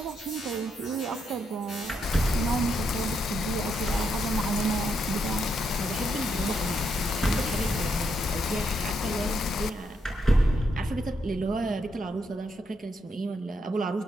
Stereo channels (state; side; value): normal; both; correlation 0.79